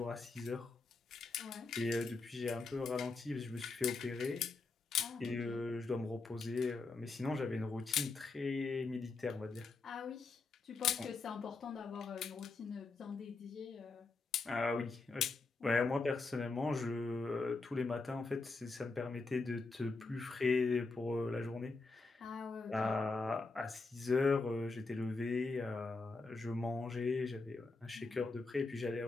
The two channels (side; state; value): right; quieter; 3.8 dB